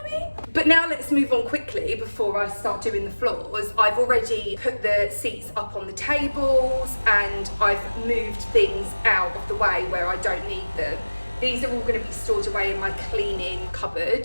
I mean? But now let's move on quickly before I start doing the floors. I've already put the seats up on the tables, and I've moved things out of the way where I don't need them. These are all going to be stored away in my cleaning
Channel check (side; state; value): both; inverted; correlation -1.00